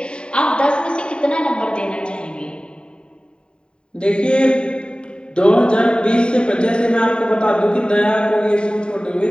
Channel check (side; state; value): right; late; 0.050 ms